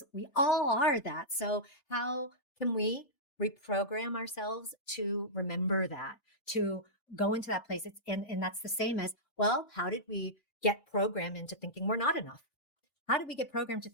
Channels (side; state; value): right; late; 3.2 ms